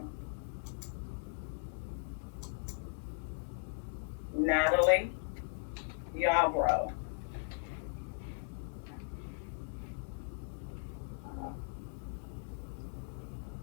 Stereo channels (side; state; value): right; silent; digital silence